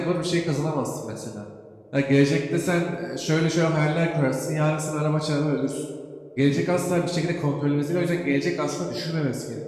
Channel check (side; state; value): both; identical; correlation 1.00